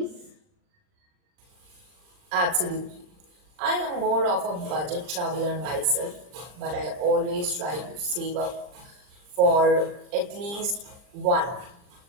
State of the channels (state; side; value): late; left; 39 ms